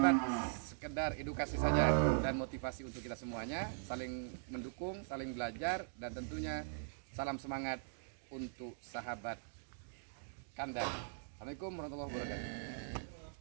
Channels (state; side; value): silent; left; digital silence